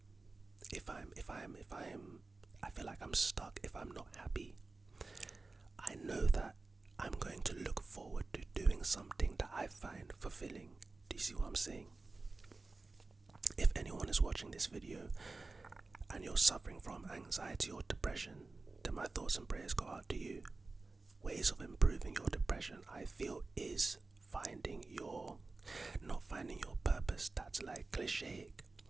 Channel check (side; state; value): left; quieter; 3.6 dB